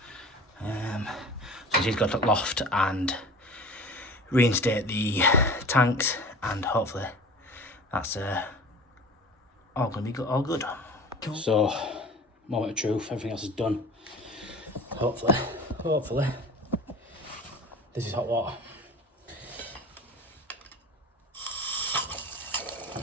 So he's got to loft and reinstate the tanks, and hopefully that's all gonna be good, all good. Cool. So, moment of truth, everything else is done. Hopefully, this is hot water.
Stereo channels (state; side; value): normal; both; correlation 0.39